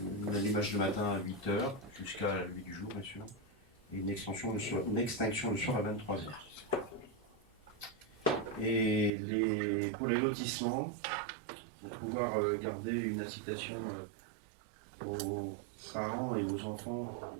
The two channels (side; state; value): left; drops out; at 9.1 s